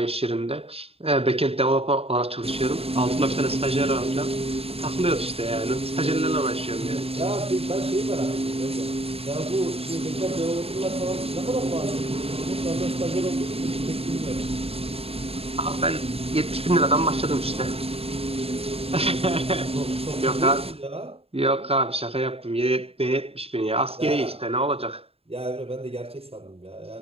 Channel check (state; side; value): late; left; 0.28 ms